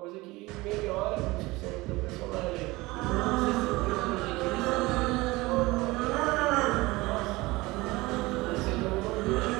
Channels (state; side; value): quieter; left; 21.2 dB